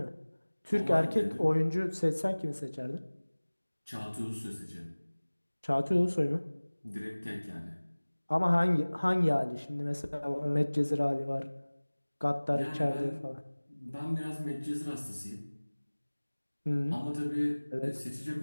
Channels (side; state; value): both; inverted; correlation -1.00